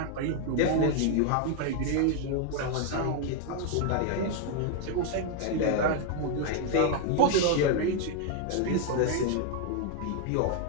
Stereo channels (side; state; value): both; different; correlation 0.00